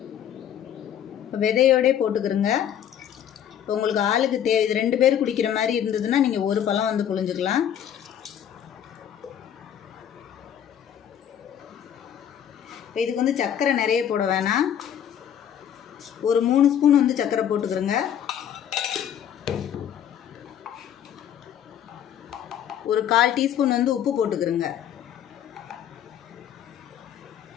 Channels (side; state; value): right; quieter; 9.6 dB